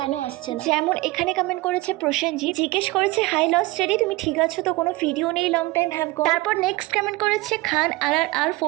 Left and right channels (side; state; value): left; quieter; 20.6 dB